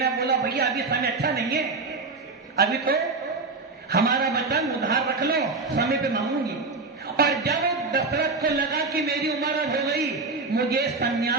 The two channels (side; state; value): left; quieter; 3.9 dB